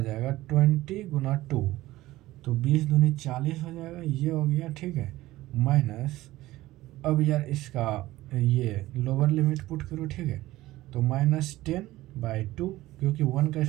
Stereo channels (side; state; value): left; quieter; 17.0 dB